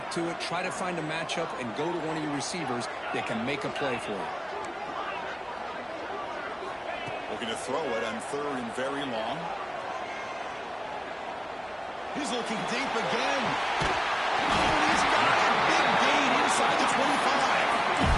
to it, try to find a matchup, and go to one of your receivers that can make a play for you. Looking to throw it on 3rd and very long. He's looking deep again. Oh, he's got a big gain inside the 25.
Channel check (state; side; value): identical; both; correlation 1.00